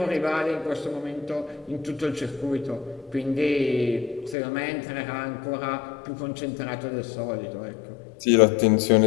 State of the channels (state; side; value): drops out; right; at 4.4 s